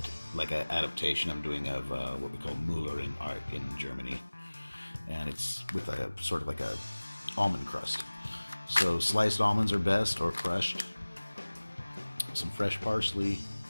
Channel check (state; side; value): inverted; both; correlation -1.00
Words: I'm doing of what we call Müllerin Art in Germany, and it's with a sort of like a almond crust. So sliced almonds are best, or crushed. Some fresh parsley.